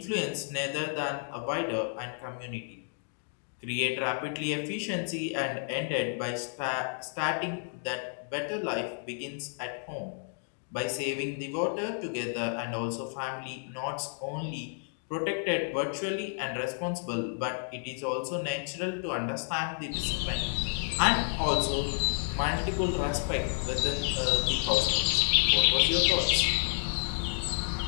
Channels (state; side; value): silent; right; 57 dB below the other